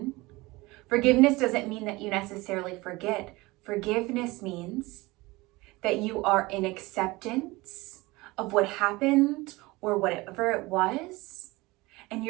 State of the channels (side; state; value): left; quieter; 21.8 dB